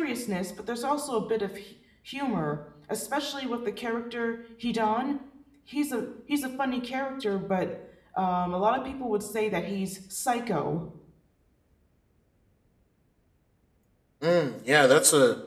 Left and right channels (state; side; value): identical; both; correlation 1.00